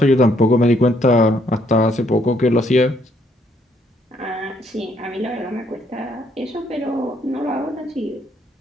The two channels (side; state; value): both; normal; correlation 0.70